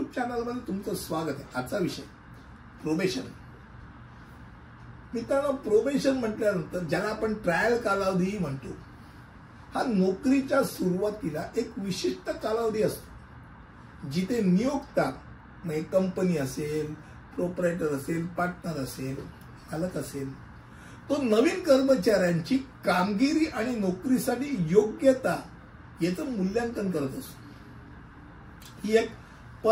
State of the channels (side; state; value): both; identical; correlation 1.00